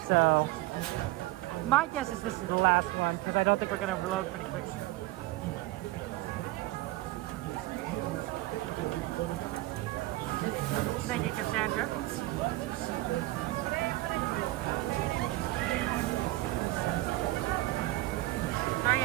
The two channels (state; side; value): quieter; left; 18.5 dB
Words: So my guess is this is the last one because I don't think we're gonna reload pretty quick. Thank you, Cassandra.